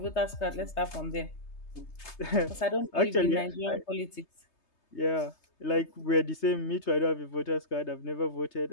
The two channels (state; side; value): late; right; 3.3 ms